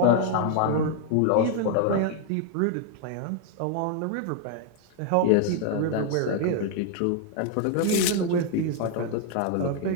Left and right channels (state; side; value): different; both; correlation 0.00